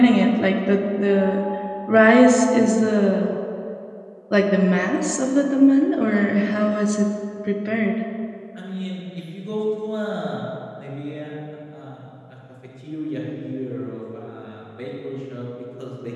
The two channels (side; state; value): both; identical; correlation 1.00